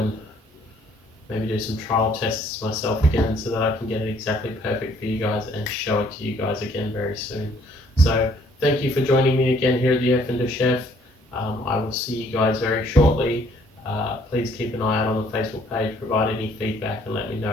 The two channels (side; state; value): both; normal; correlation 0.62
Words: maybe do some trial tests myself again so that I can get it exactly perfect for you guys and show it to you guys again very soon. So thank you for joining me again here at the Erfinder Chef. I will see you guys very shortly. Please keep an eye out on the Facebook page, provide any feedback and let me